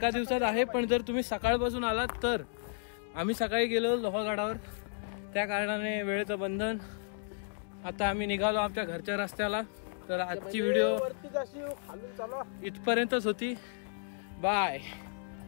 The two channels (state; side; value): silent; right; digital silence